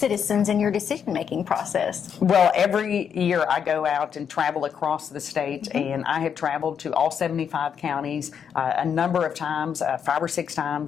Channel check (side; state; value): right; quieter; 7.6 dB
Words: in your decision-making process? Well, every year I go out and travel across the state, and I have traveled to all 75 counties a number of times, 5 or 6